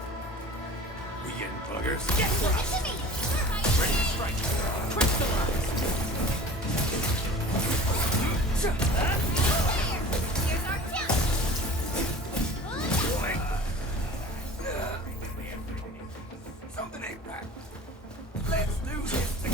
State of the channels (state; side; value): normal; both; correlation 0.41